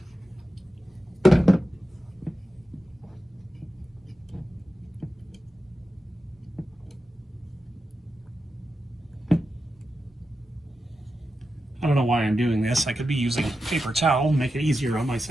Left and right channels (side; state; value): both; normal; correlation 0.90